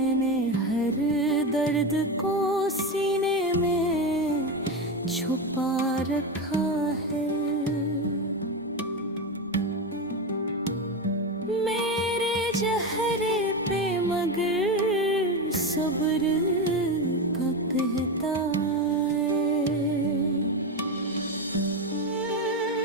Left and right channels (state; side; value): normal; both; correlation 0.16